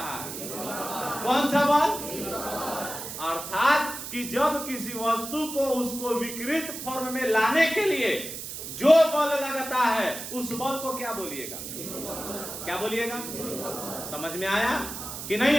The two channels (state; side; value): noise; right; hiss, 8 dB below the sound